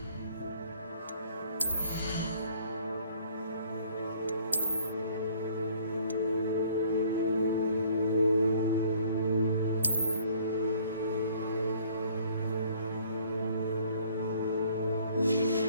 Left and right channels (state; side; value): inverted; both; correlation -0.58